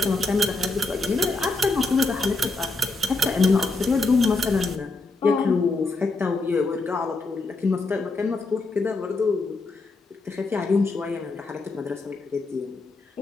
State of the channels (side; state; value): right; quieter; 3.3 dB